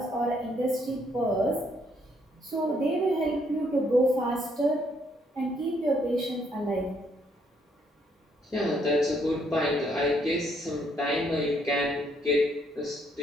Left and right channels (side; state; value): both; normal; correlation 0.70